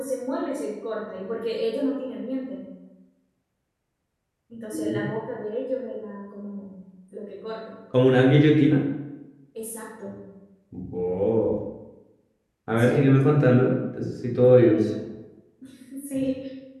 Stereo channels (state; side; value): identical; both; correlation 1.00